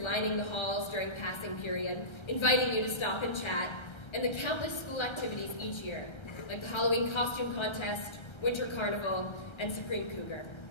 the halls during passing period, inviting you to stop and chat, and the countless school activities each year, like the Halloween costume contest, Winter Carnival, and Supreme Cougar.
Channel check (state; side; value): late; right; 1.3 ms